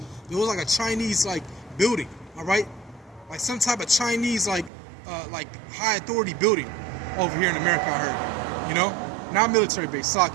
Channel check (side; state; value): left; drops out; at 4.7 s